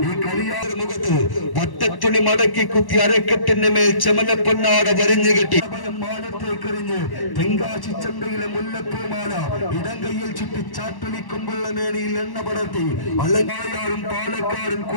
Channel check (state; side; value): late; right; 1.1 ms